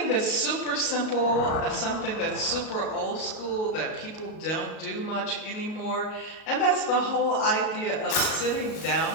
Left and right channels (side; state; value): right; late; 38 ms